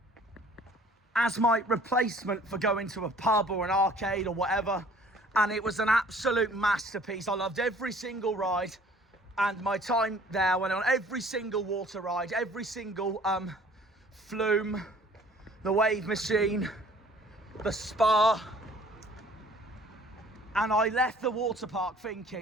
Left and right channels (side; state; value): both; normal; correlation 0.53